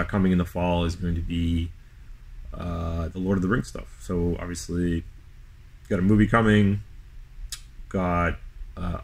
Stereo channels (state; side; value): identical; both; correlation 1.00